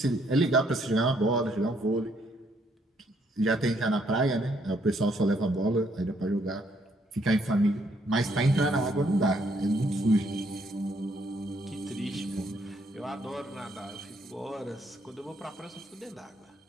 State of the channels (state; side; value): normal; both; correlation 0.70